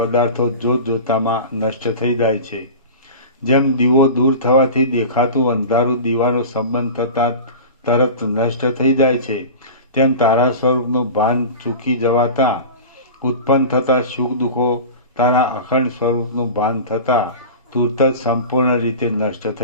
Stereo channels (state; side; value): inverted; both; correlation -0.33